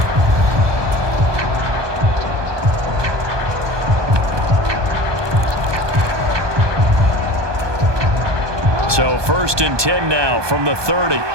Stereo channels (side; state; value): left; late; 1.2 ms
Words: So 1st and 10 now from the 30.